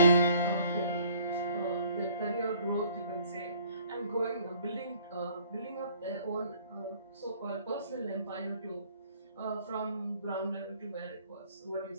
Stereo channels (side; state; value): both; inverted; correlation -0.58